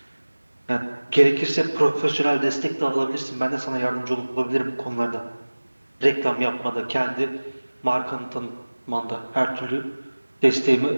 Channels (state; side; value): inverted; both; correlation -1.00